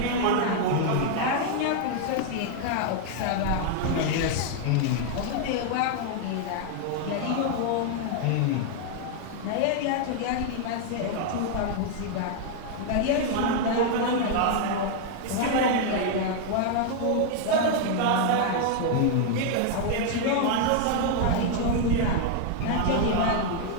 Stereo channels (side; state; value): both; different; correlation 0.00